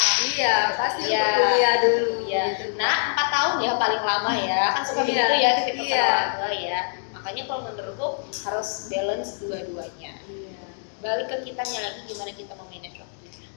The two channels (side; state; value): right; silent; 62 dB below the other